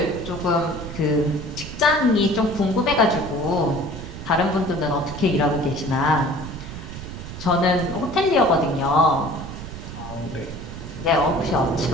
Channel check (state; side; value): noise; right; rumble, 10 dB below the sound